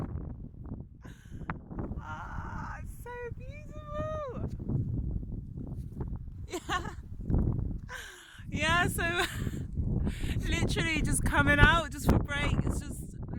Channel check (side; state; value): both; identical; correlation 1.00